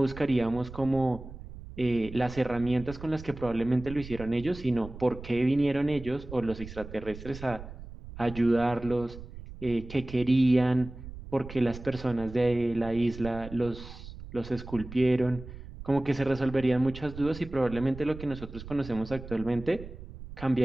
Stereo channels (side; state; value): right; noise; rumble, 13 dB below the sound